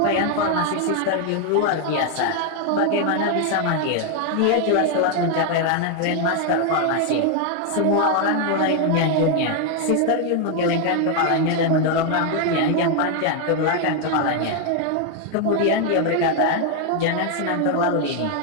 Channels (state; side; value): different; both; correlation 0.00